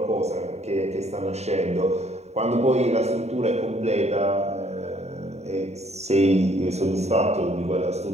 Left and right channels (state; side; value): late; left; 0.32 ms